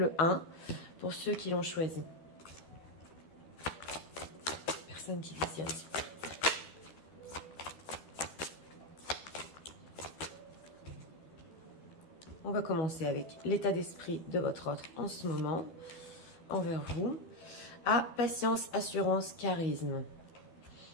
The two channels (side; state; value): right; late; 12 ms